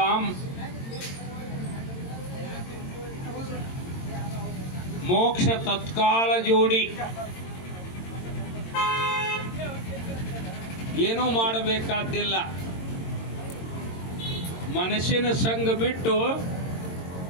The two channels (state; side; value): late; right; 22 ms